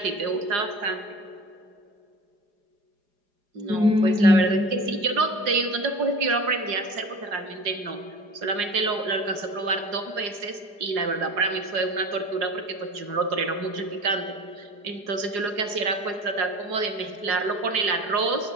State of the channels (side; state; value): left; late; 4.9 ms